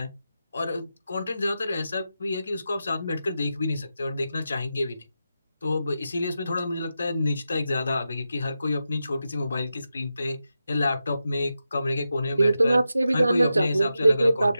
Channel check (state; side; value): inverted; both; correlation -0.89